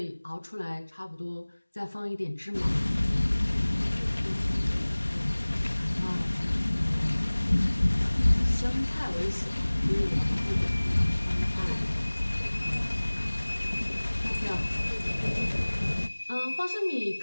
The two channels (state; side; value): inverted; both; correlation -1.00